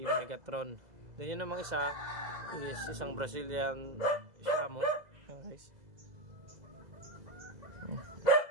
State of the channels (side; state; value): left; late; 2.0 ms